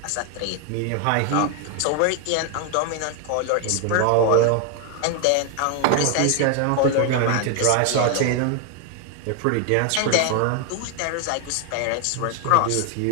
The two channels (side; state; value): both; different; correlation 0.01